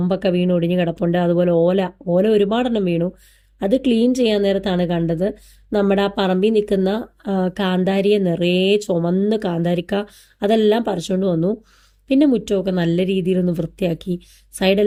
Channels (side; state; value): both; identical; correlation 1.00